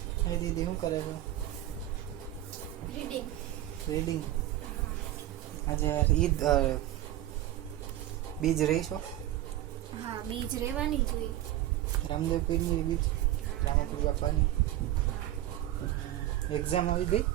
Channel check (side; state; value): left; quieter; 13.9 dB